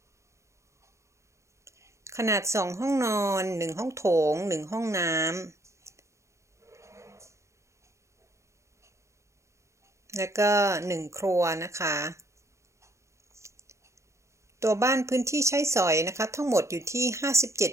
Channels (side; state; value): left; late; 0.14 ms